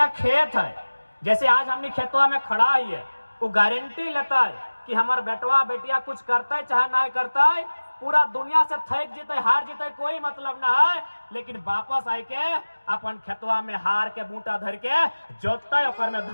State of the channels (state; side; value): inverted; both; correlation -1.00